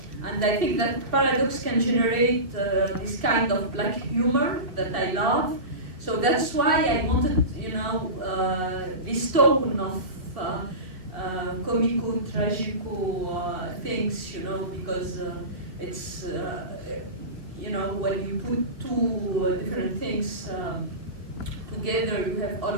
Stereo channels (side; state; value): left; late; 2.7 ms